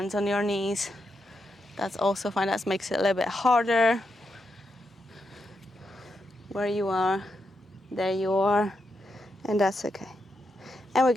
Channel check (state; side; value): normal; both; correlation 0.84